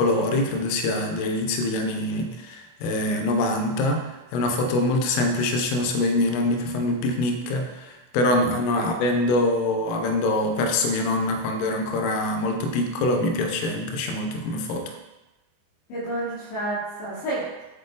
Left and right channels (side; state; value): right; late; 24 ms